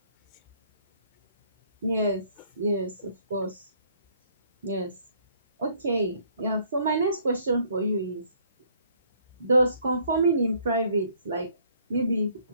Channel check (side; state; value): both; inverted; correlation -0.62